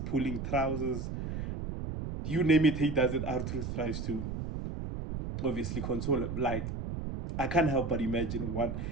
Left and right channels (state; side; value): noise; right; rumble, 5 dB below the sound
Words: trousers. You name it, he does it. R-Truth tries to obviously console him. Like, I can't help but imagine what